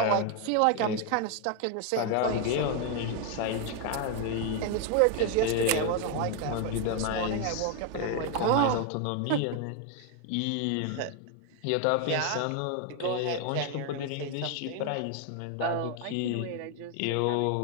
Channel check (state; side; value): different; both; correlation 0.01